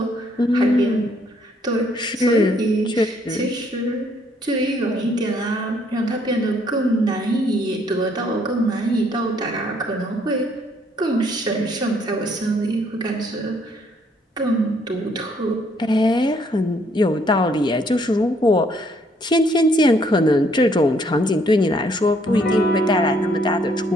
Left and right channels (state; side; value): normal; both; correlation 0.67